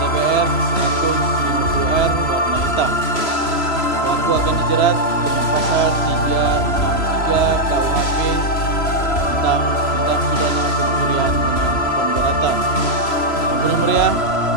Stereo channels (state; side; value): late; right; 3.0 ms